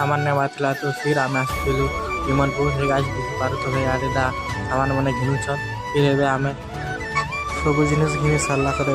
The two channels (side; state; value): both; identical; correlation 1.00